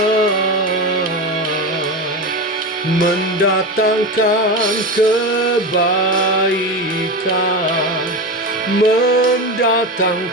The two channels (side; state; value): both; normal; correlation 0.21